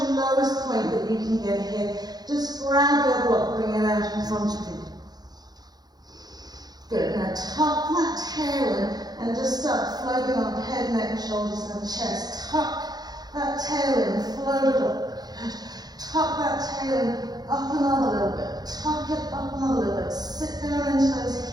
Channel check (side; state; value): left; late; 0.19 ms